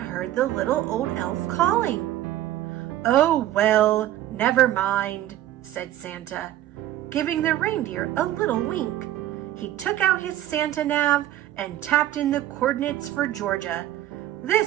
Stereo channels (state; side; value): quieter; left; 13.5 dB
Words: the little old elf calling. Oh, well, never mind, said Santa, giving the reindeer a little wink. He took out his Santa nav and tapped in the coordinates for Georgia.